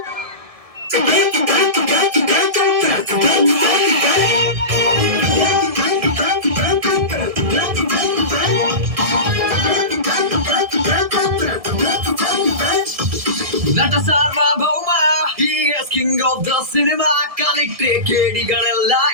ನಟ ಸಾರ್ವಭೌಮ, he is king of the cinema. ಕಲಿಕ್ಟ್ರೆ ಕೇಡಿಗಳೆಲ್ಲ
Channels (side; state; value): left; late; 1.7 ms